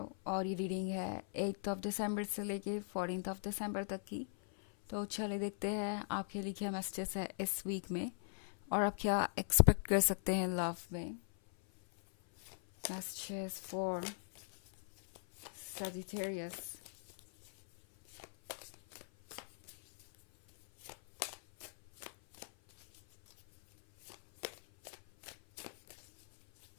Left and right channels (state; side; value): silent; right; 51 dB below the other